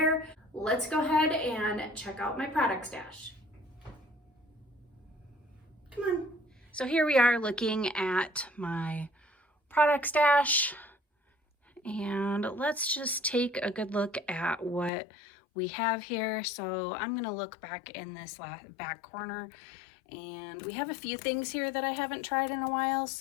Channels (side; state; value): right; drops out; at 14.9 s